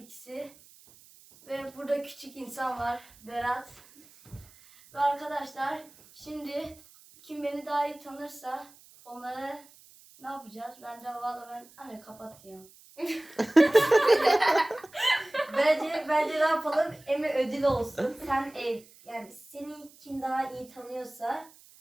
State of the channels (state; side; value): noise; right; hiss, 25 dB below the sound